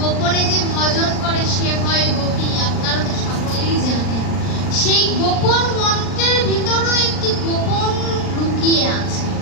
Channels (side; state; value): right; late; 39 ms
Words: যে ভজন করে সে হয় গোপী, আপনারা তো সকলেই জানেন। সেই গোপন মন্ত্রের ভিতরেও একটি গোপন লুকিয়ে আছে।